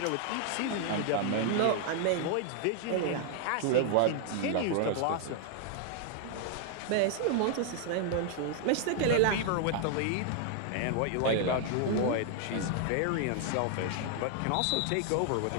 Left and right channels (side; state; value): both; different; correlation 0.00